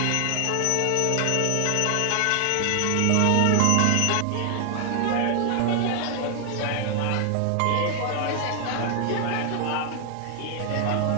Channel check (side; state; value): both; different; correlation 0.00